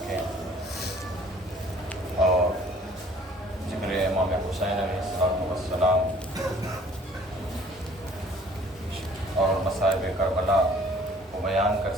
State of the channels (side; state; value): both; normal; correlation 0.55